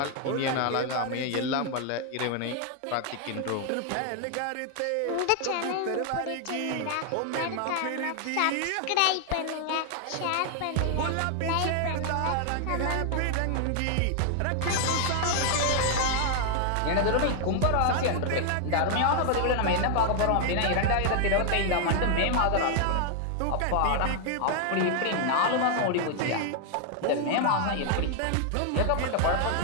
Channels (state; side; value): different; both; correlation 0.00